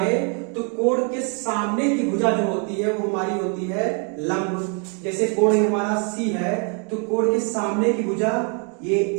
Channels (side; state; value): left; quieter; 38.3 dB